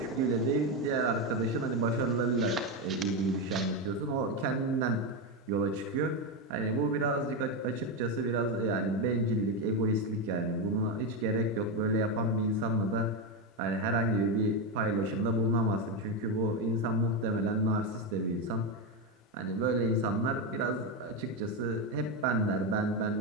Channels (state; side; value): normal; both; correlation 0.10